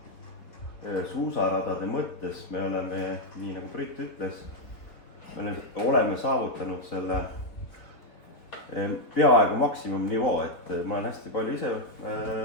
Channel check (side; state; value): right; late; 3.9 ms